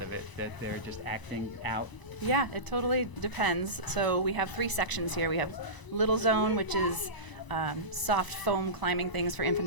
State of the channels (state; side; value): late; right; 1.0 ms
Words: of it, that they're just acting out. Yeah, it totally depends. So we have 3 sections here. We have Little Zone, which is soft foam climbing things for